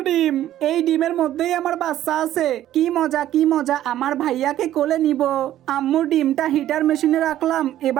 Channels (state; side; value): quieter; left; 12.7 dB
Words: ডিম। এই ডিমের মধ্যেই আমার বাচ্চা আছে। কি মজা কি মজা, আমার ভাইয়াকে কোলে নিব। আম্মুর ডিমটা হিটার মেশিনে রাখলাম,